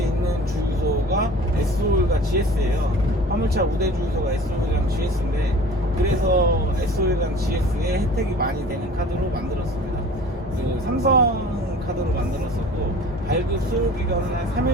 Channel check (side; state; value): both; normal; correlation 0.44